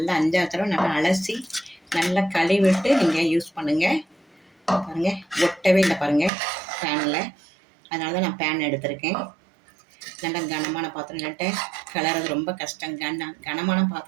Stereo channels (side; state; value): left; drops out; at 6.3 s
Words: 5 தடவை நல்லா அலசி நல்லா கழுவிட்டு நீங்கள் யூஸ் பண்ணுங்கள். பாருங்கள், ஒட்டவே இல்லை பாருங்கள் பேனில். அதனால தான் நான் பேன் எடுத்திருக்கேன். நல்லா கனமான பாத்திரம், இல்லாட்ட கலர்றது ரொம்ப கஷ்டம். கனமான